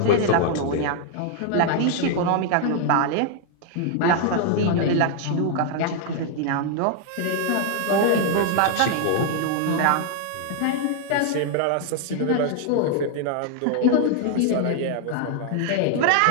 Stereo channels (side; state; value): both; different; correlation 0.00